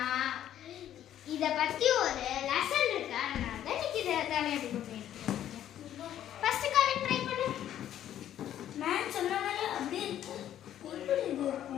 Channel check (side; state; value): right; quieter; 11.3 dB